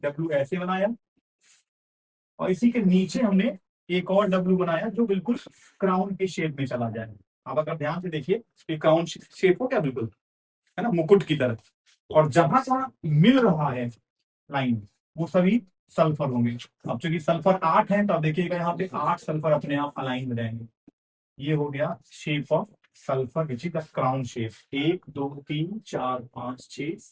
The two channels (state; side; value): identical; both; correlation 1.00